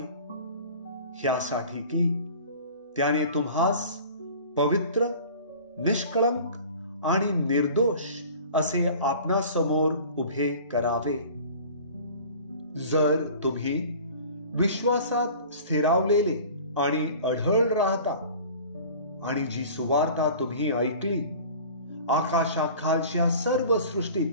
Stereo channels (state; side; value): inverted; both; correlation -0.43